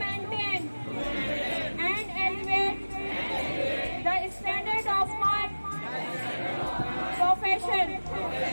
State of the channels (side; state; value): both; inverted; correlation -1.00